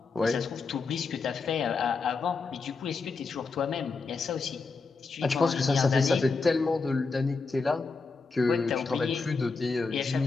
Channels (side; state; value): right; quieter; 4.3 dB